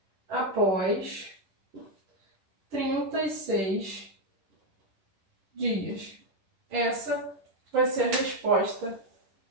após 36 dias. Essa vai ser a resposta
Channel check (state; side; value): late; left; 10 ms